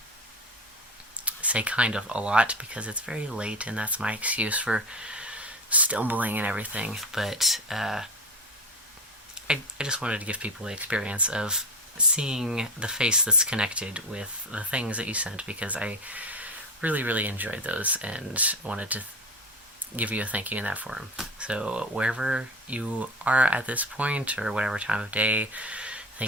say kind of a lot because it's very late and that's my excuse for stumbling and everything. But I just wanted to give people the experience of seeing the face that's connected with the things that you sent because I really, really enjoyed those and wanted to give you a thank you in that form. So wherever you are at this point or whatever time of day,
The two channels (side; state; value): both; normal; correlation 0.26